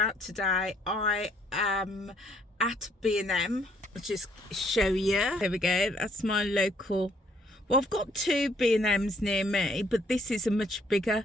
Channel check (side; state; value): both; normal; correlation 0.66